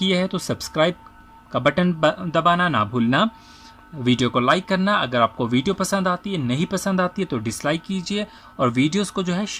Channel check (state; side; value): identical; both; correlation 1.00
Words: हैं तो सब्सक्राइब का बटन दबाना ना भूलना, वीडियो को लाइक करना। अगर आपको वीडियो पसंद आती है, नहीं पसंद आती है तो डिसलाइक कीजिए, और वीडियोस को जो है